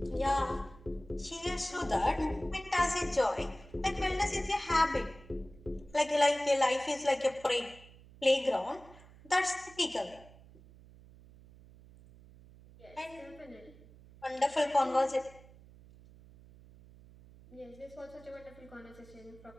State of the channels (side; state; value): right; noise; hum, 22 dB below the sound